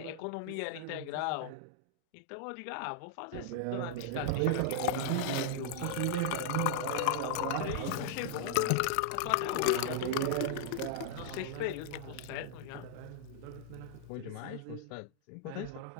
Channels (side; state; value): both; different; correlation -0.01